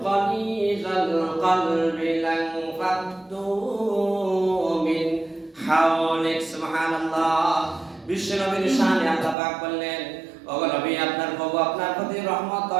গালিযাল কলবি লানফাদ্দু মিন হাওলিক। সুবহানাল্লাহ। বিশ্বনবীর শানে আল্লাহ পাক বললেন, ওগো নবী, আপনার প্রভু আপনার প্রতি রহমত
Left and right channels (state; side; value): drops out; left; at 9.3 s